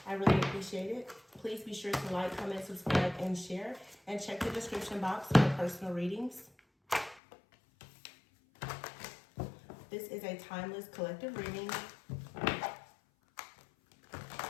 I really appreciate it. Please be sure to like, comment, subscribe, and share. And check the description box for personal readings. This is a timeless collective reading.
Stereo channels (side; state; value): right; drops out; at 7.2 s